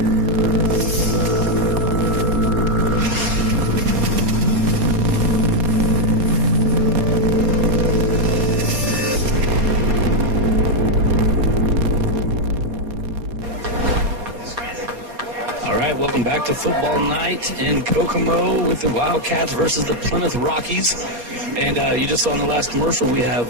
Welcome back to football night in Kokomo with the Wildkats versus the Plymouth Rockies. And you just saw in the last commercial, we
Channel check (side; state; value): left; late; 4.3 ms